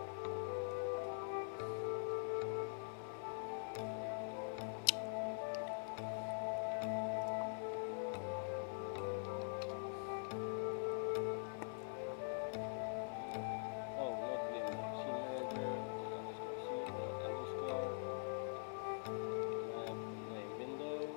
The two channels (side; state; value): right; silent; digital silence